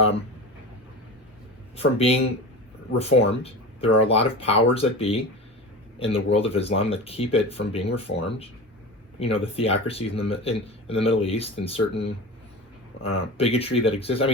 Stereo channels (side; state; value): both; normal; correlation 0.29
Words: reformed. There are a lot of powers that be in the world of Islam that keep it from being reformed. The theocracies in the Middle East, and certain bigotry that exists. I